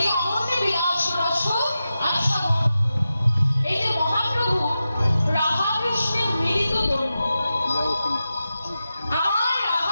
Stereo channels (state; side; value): inverted; both; correlation -0.91